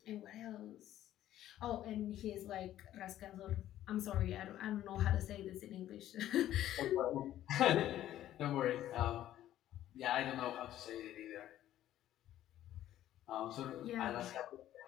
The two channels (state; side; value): quieter; right; 12.8 dB